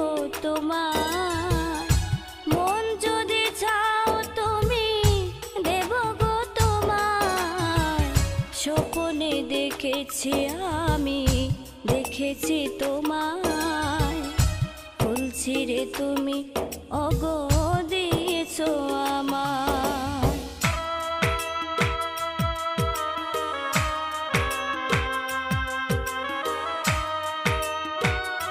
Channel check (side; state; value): both; identical; correlation 1.00